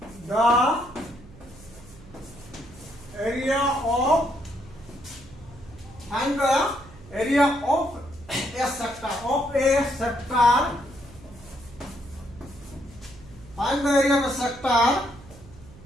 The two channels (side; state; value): right; noise; hum, 20 dB below the sound